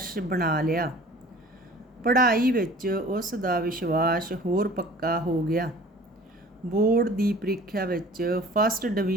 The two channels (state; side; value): normal; both; correlation 0.46